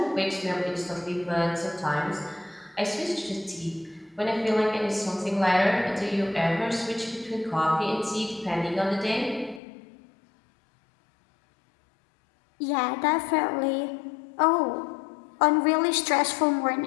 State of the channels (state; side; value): drops out; right; at 9.6 s